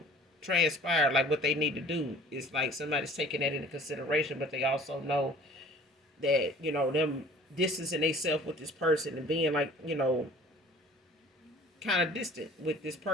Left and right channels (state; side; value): normal; both; correlation 0.48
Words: transpired, like what they need to do. It's like somebody's taking that into consideration, but they also know that, them distancing themselves with this person and being like, kind of distant with this